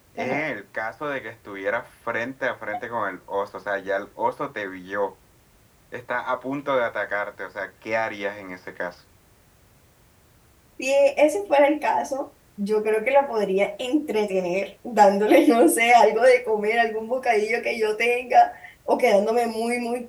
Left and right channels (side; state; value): both; identical; correlation 1.00